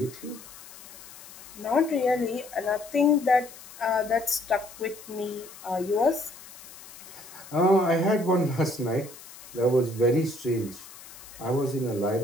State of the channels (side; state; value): left; noise; hiss, 17 dB below the sound